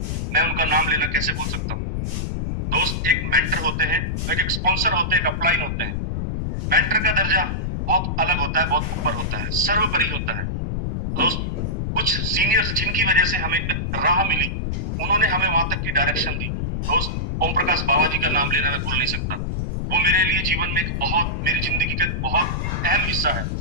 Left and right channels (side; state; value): left; noise; rumble, 1 dB below the sound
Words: मैं उनका नाम लेना कैसे भूल सकता हूँ। दोस्त एक मेंटर होते हैं, एक स्पॉन्सर होते हैं, एक अपलाइन होते हैं। मेंटर का दर्जा बहुत अलग होता है, बहुत ऊपर होता है, सर्वोपरि होता है। दोस्त कुछ सीनियर्स जिनकी वजह से हमें राह मिली, उन्होंने हमें वहां तक की डायरेक्शन दी। दोस्त ओम प्रकाश बाबा जी का नाम लेना मैं भूल नहीं सकता, वो मेरे लिए जीवन में मेरी जिंदगी का एक बहुत अहम हिस्सा है।